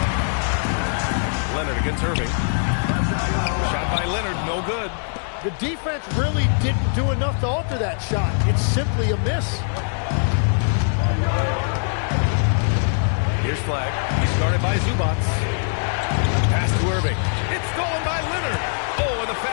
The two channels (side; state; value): right; silent; digital silence